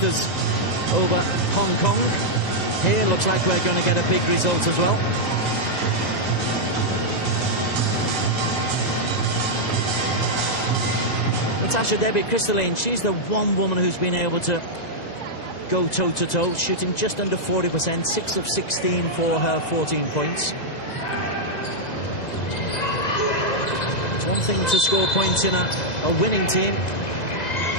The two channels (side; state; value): right; late; 1.9 ms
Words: over Hong Kong. Here looks like we're going to get a big result as well. Natasha Debbie Crystalline, she's the one woman who's been able to go toe-to-toe, shooting just under 40%, 6 of 16 for her 14 points. It's one thing to score points in a winning team,